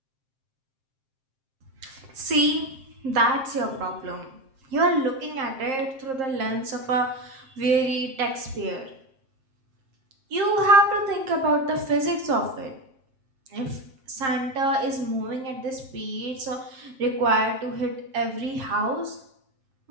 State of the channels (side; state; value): left; late; 7.6 ms